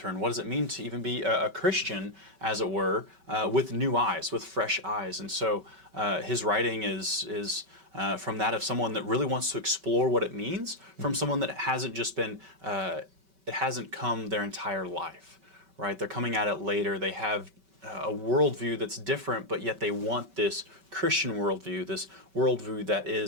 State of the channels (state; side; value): late; left; 5.2 ms